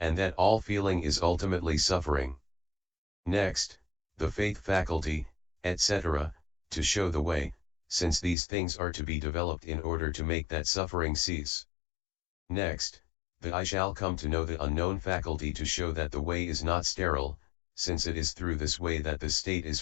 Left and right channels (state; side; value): drops out; right; at 8.3 s